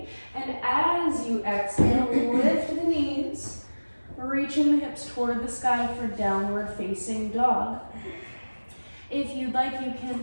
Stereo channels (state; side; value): inverted; both; correlation -1.00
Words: And as you exhale, lift the knees, reaching the hips toward the sky for downward facing dog. If you'd like, you